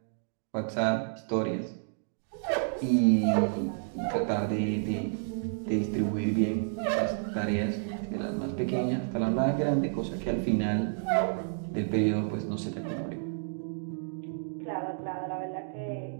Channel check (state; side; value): silent; left; digital silence